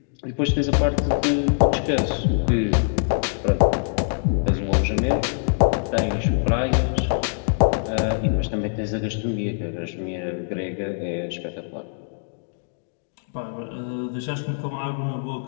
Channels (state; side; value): silent; right; digital silence